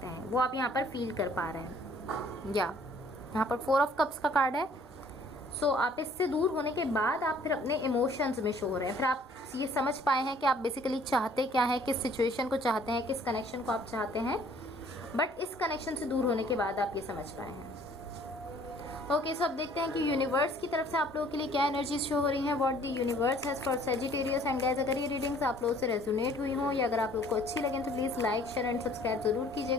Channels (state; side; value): normal; both; correlation 0.57